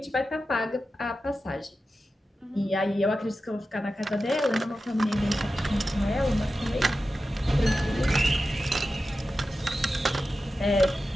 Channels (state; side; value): normal; both; correlation 0.92